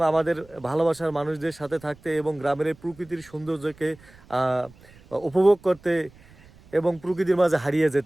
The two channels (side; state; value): right; noise; rumble, 25 dB below the sound